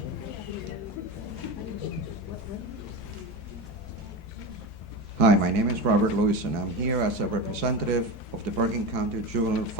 Hi, my name is Robert Lewis, and I'm here as a representative of the Bergen County Juvenile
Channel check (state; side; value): normal; both; correlation 0.23